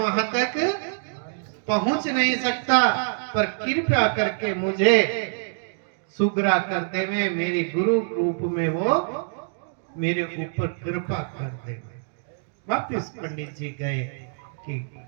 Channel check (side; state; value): left; silent; digital silence